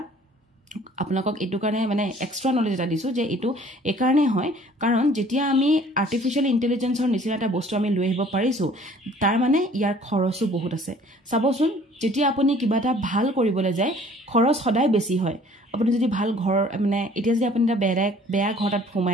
আপোনালোকক এটো কাৰণে মানে এক্সট্ৰা নলেজ এটা দিছো যে এটো একাৰণে হয় কাৰণ যেতিয়া আমি আৰ্টিফিশিয়াল ইন্টেলিজেন্সৰ নিচিনা এটা বস্তু আমি লৈ আহিব পাৰিছো তাৰ মানে ইয়াৰ খৰচো বহুত আছে চাবচোন যেতিয়া আপুনি কিবা এটা ভাল কৰিবলৈ যায় খৰচ সদায় বেছি হয় আপুনি যদি ভাল ঘৰ মানে এতিয়া যদি আপুনি এটা বেয়া ঘৰটাত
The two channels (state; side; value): normal; both; correlation 0.54